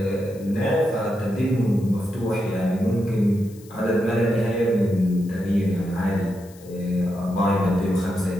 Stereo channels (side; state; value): left; noise; hiss, 24 dB below the sound